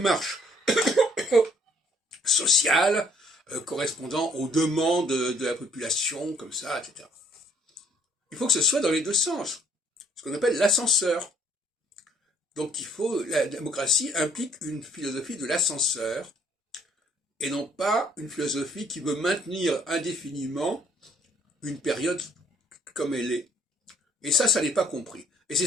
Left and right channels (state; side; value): normal; both; correlation 0.63